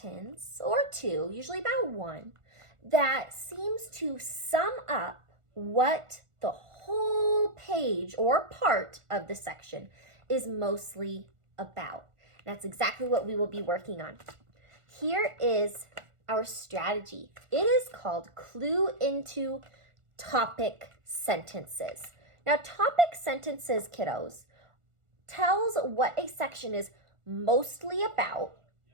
or two, usually about one, that seems to sum up what the whole page or part of the section is mostly about. That's exactly what we will be working on. Here is our strategy. It is called Clue into Topic Sentences. Now, topic sentences, kiddos, tells what a section is mostly about,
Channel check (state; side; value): late; left; 1.4 ms